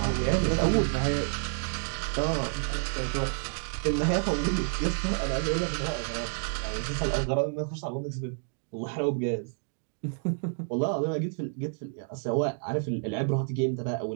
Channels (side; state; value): left; silent; 58 dB below the other